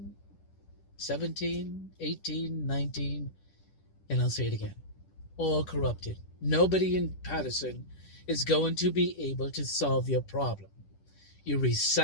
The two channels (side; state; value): right; late; 10 ms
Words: 17, 18, 19, and I'll say it again. All corrupted. Nobody in Paterson is going to be able to solve your problem. You